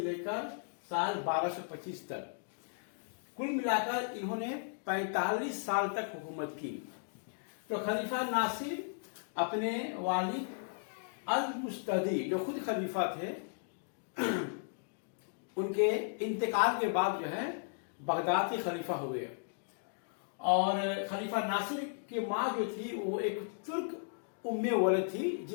साल 1225 तक। कुल मिलाकर इन्होंने 45 साल तक हुकूमत की। तो खलीफा नासिर अपने वालिद अल मुस्तदी, जो खुद खलीफा थे, उनके इंतकाल के बाद जो है बगदाद के खलीफा हुए। और खलीफा नासिर की माँ जो थी वो एक तुर्क उम्मे वलद थी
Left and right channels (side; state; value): right; silent; digital silence